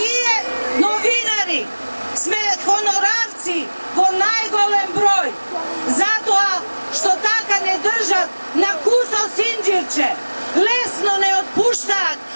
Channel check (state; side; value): inverted; both; correlation -1.00